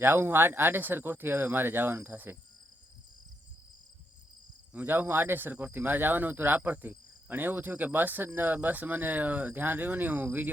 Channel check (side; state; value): both; normal; correlation 0.80